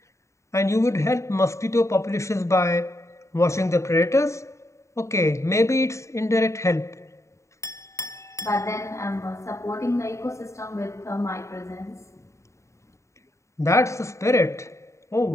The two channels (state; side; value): late; right; 0.14 ms